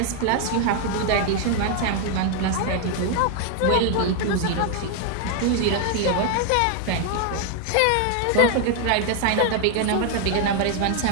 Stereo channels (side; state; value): both; different; correlation 0.00